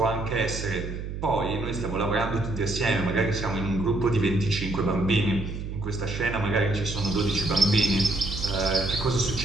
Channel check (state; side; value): noise; right; hum, 6 dB below the sound